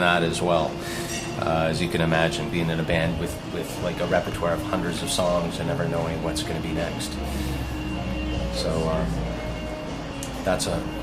as well. As you can imagine, being in a band with like a repertoire of hundreds of songs and never knowing what's going to be next. So that's a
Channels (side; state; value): both; identical; correlation 1.00